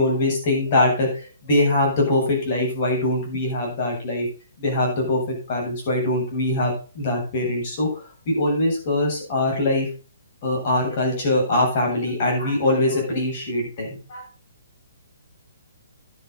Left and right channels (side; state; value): both; inverted; correlation -0.52